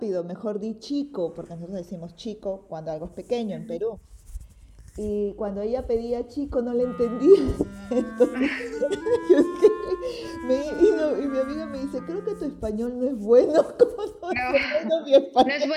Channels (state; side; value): identical; both; correlation 1.00